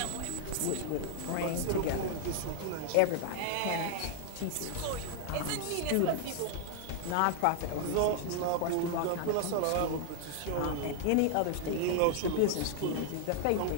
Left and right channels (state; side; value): different; both; correlation 0.00